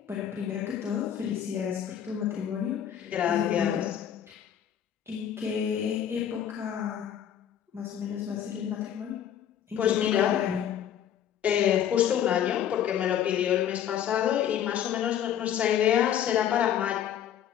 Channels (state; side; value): quieter; right; 9.8 dB